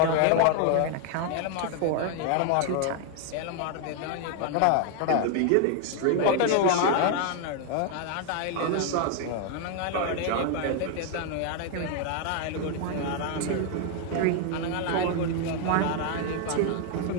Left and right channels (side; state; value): both; different; correlation 0.00